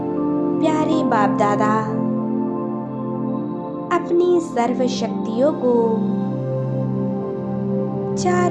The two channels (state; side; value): identical; both; correlation 1.00